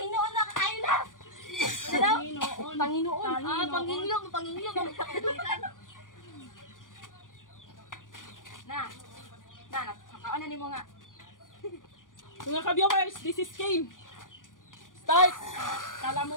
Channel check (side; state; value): right; late; 0.88 ms